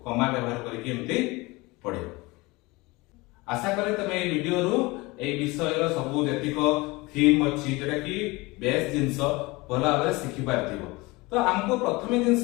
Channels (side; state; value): right; quieter; 23.2 dB